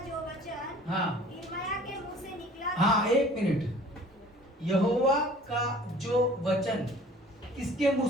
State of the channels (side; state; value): both; normal; correlation 0.49